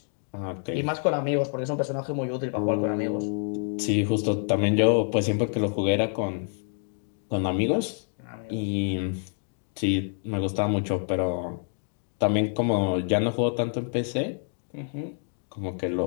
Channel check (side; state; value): right; silent; 60 dB below the other